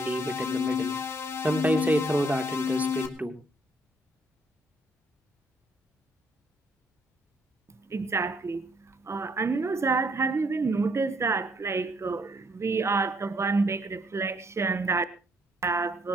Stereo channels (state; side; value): normal; both; correlation 0.68